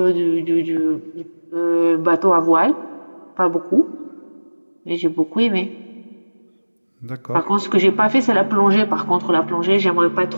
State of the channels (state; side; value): inverted; both; correlation -1.00